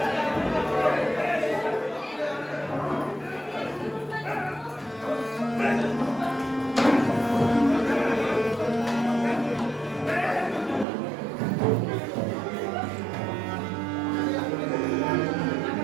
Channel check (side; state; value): left; drops out; at 10.9 s